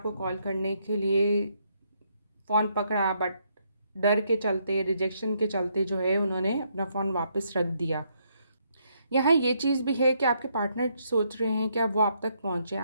कॉल करने के लिए फ़ोन पकड़ा, बट डर के चलते, रिजेक्शन के चलते जो है उन्होंने अपना फ़ोन वापस रख दिया। यहाँ ये चीज़ भी है कि आपके पार्टनर सोच रहे हैं कि अब वो आप तक पहुँचें,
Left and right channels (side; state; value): both; inverted; correlation -0.74